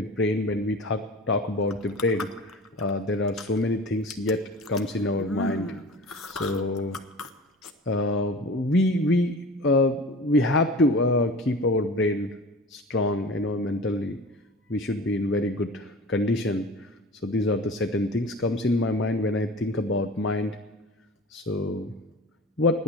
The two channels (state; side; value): normal; both; correlation 0.37